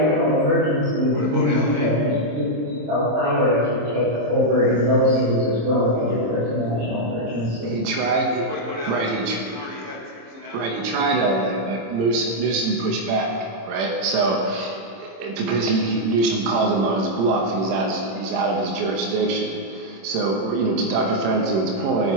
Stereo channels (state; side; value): late; left; 26 ms